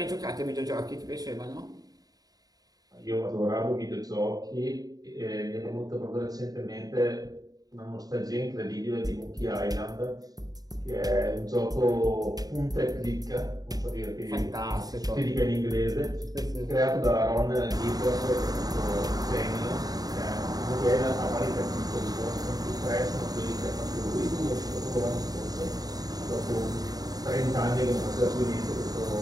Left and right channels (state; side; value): late; left; 0.18 ms